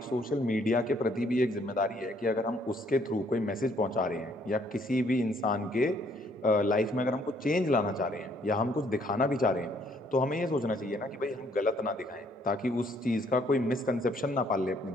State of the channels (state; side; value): normal; both; correlation 0.66